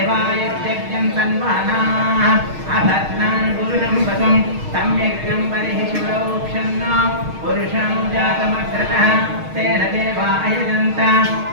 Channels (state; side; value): late; left; 6.4 ms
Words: तन्वानाः अभद्रं पुरुषं वसुं तं यज्ञं बलिः शिवरोक्षन्न पुरुषं जातमग्रतः तेन देवा अयजन्त